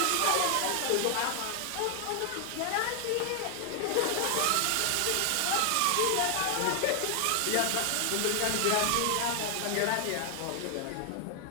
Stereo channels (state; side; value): different; both; correlation 0.00